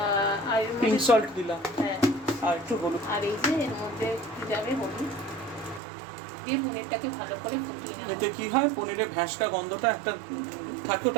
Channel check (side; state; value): left; drops out; at 5.8 s